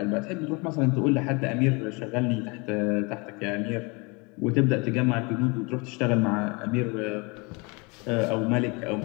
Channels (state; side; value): quieter; right; 28.7 dB